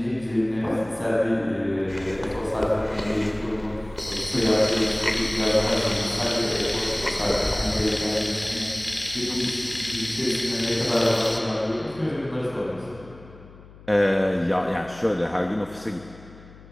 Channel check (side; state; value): left; noise; hum, 20 dB below the sound